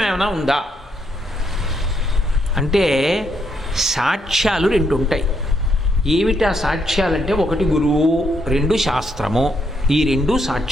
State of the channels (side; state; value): both; normal; correlation 0.75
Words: ఏమైనా ఉందా అంటే సాక్ష్యాలు 2 ఉంటాయి. ఏమిటా సాక్ష్యాలంటే, 1 గురువు, 2 శాస్త్రము. ఈ 2